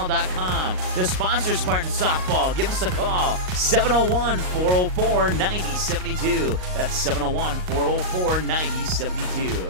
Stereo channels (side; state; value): left; late; 38 ms